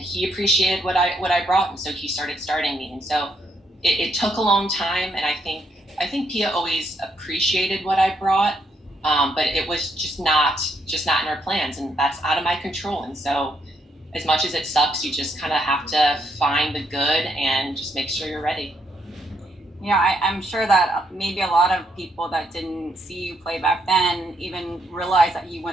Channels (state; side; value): normal; both; correlation 0.75